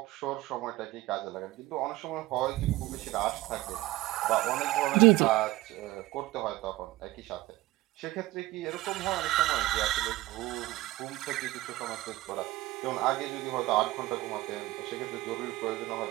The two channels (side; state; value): left; quieter; 18.2 dB